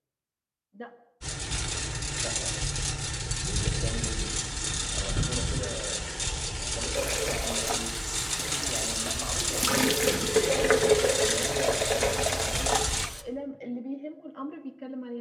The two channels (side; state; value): both; identical; correlation 1.00